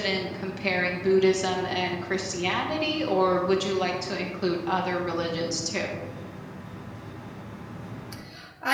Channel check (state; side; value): identical; both; correlation 1.00